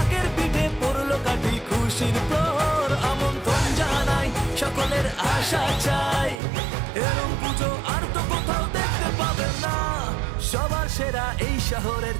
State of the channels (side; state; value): left; drops out; at 6.4 s